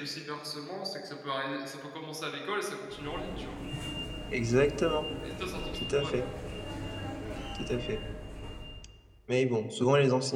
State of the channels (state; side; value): identical; both; correlation 1.00